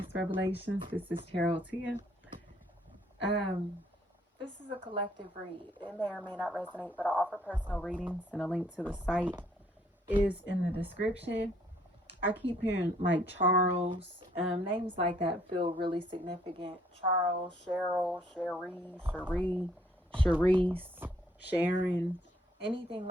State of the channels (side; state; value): both; normal; correlation 0.65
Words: Revelations. This is Tarot Tia. Um, this is a collective read. It may or may not resonate, but I offer personal readings, and a link to the site is in the description. I keep hearing like Charles, names like that feel really significant. Charles, Cheryl, Cherise, Sharon, anything